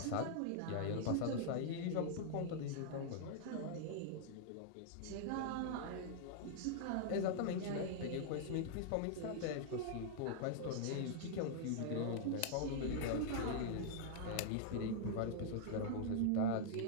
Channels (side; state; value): both; different; correlation -0.01